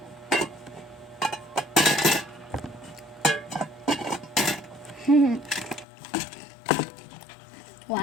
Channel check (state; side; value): drops out; right; at 5.9 s